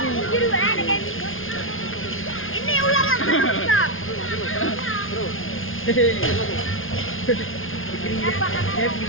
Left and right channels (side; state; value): right; late; 0.59 ms